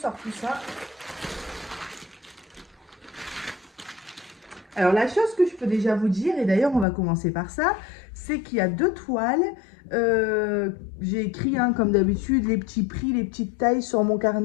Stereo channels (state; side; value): drops out; right; at 6.9 s